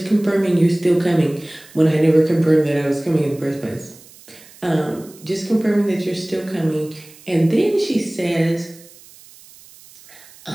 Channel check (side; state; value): right; noise; hiss, 23 dB below the sound